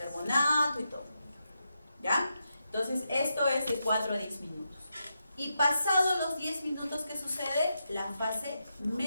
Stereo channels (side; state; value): both; inverted; correlation -0.85